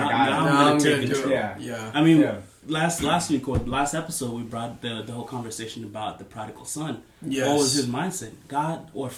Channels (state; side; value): identical; both; correlation 1.00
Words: I'm going to take control. Yeah. I mean, last week or last episode, we brought the whole conversation about the prodigal son. Yes. What was his mindset? God or